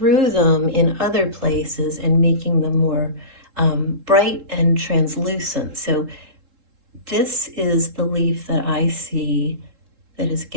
them in other places and making them more bright and translucent. So this is the leaf that I see that is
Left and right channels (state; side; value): late; left; 3.7 ms